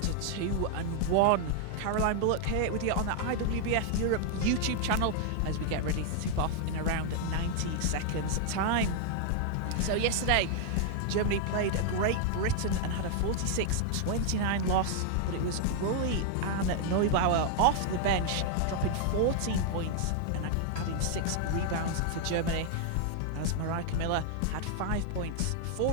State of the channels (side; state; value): both; different; correlation 0.00